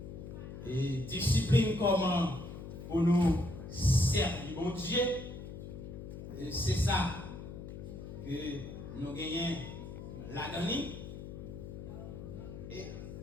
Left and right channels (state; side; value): noise; left; hum, 10 dB below the sound